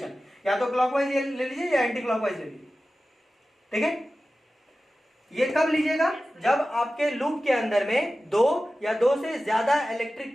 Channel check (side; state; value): both; normal; correlation 0.95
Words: या तो क्लॉकवाइज ले लीजिए या एंटी क्लॉकवाइज ले लीजिए। ठीक है? ये कब लीजिएगा? जब आपके लूप के अंदर में 2 या 2 से ज्यादा